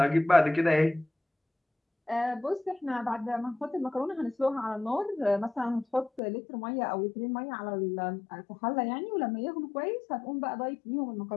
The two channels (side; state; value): right; drops out; at 6.2 s